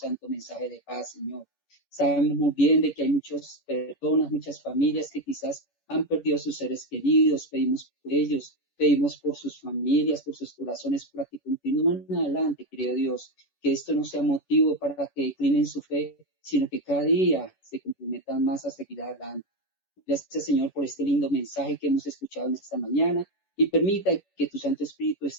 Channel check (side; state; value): right; late; 11 ms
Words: mensaje de paz, Señor. Sabemos muy bien de que hay muchas personas, muchas familias que quizás han perdido a sus seres queridos. Pedimos por ellos, pedimos por sus familias, por sus corazones, para que continúen adelante, querido Dios. Que esto no sea motivo para que declinen su fe, sino que cada día se comprometan más a seguir adelante. Gracias, Señor, por este lindo mensaje que hemos escuchado en esta mañana y permita que tu Santo Espíritu